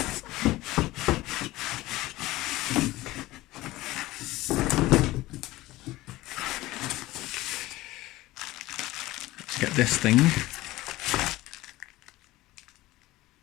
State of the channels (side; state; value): right; quieter; 18.0 dB